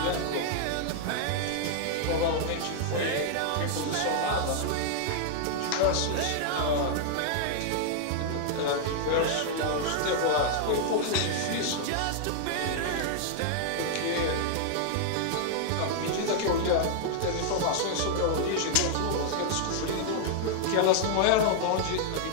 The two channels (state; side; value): different; both; correlation -0.01